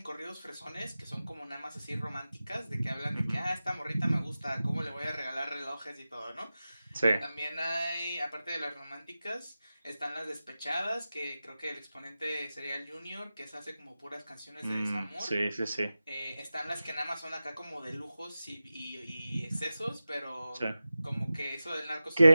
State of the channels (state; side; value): inverted; both; correlation -0.94